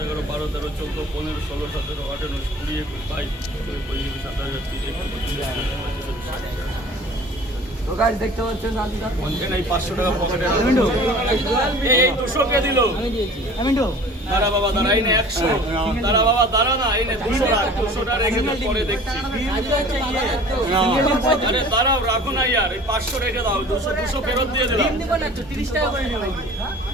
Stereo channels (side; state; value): both; normal; correlation 0.45